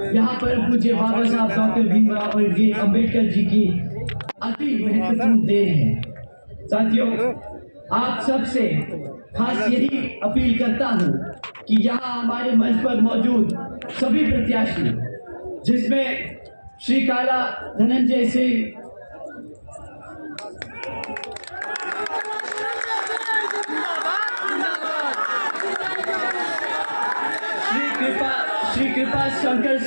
यहाँ पर पूज्य बाबा साहब डॉक्टर भीमराव अम्बेडकर जी की अति महत्वपूर्ण देन है। साथियों, आप सबसे खास यही अपील करता हूँ कि यहाँ हमारे मंच पर मौजूद सभी प्रत्याशी, जिसमें श्री काला धनंजय सिंह, श्री कृपा शंकर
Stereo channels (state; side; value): inverted; both; correlation -1.00